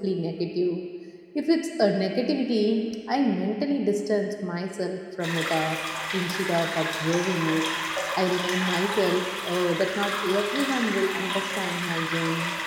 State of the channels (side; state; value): both; identical; correlation 1.00